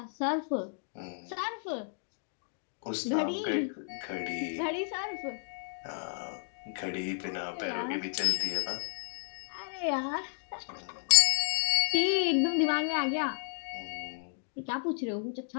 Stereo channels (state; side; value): silent; right; digital silence